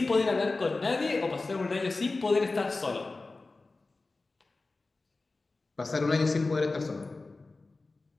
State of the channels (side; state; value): right; quieter; 3.5 dB